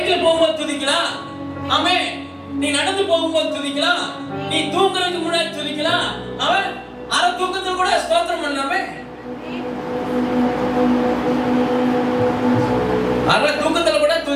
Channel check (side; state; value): both; identical; correlation 1.00